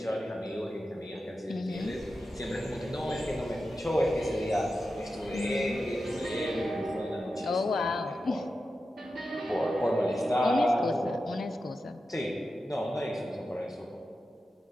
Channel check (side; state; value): both; normal; correlation 0.91